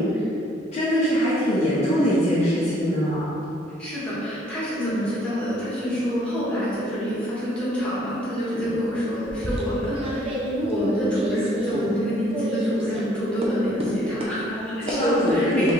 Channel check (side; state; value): both; normal; correlation 0.62